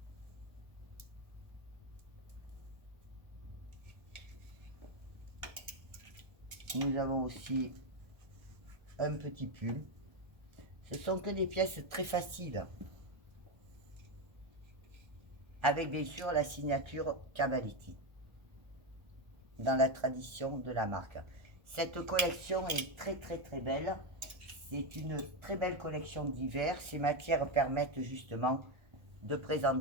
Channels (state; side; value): late; left; 1.3 ms